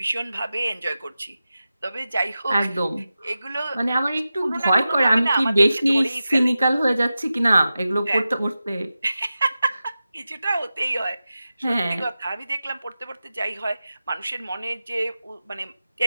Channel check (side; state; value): both; inverted; correlation -0.93